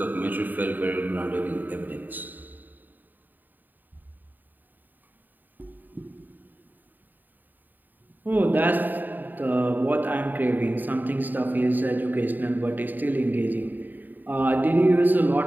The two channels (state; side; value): late; left; 0.088 ms